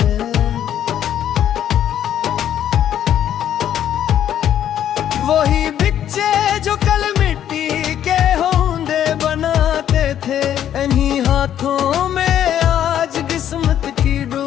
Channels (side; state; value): right; quieter; 10.5 dB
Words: वही बच्चे जो कल मिट्टी के होंदे बनाते थे, इन्हीं हाथों में आज किस्मत की